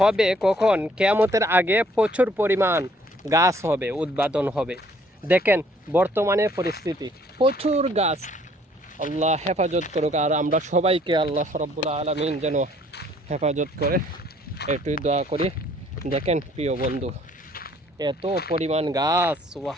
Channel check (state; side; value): normal; both; correlation 0.61